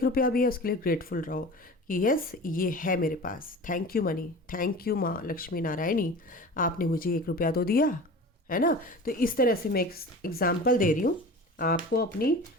रुपया भी है, उसके लिए ग्रेटफुल रहो कि यस ये है मेरे पास। Thank you money, thank you माँ लक्ष्मी नारायणी, आपने मुझे 1 रुपया तो दिया है ना। तो इस तरह से मैं एक एग्जाम्पल दे रही हूँ आपको। अपनी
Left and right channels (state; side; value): normal; both; correlation 0.36